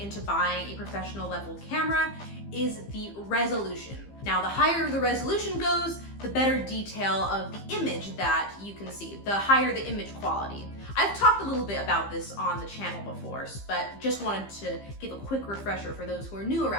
buying a professional level camera is the resolution. Now, the higher the resolution goes, the better detail of the image that you can see, the higher the image quality. I've talked a little bit about this on the channel before, but just wanted to give a quick refresher for those who are new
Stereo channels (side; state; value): right; late; 15 ms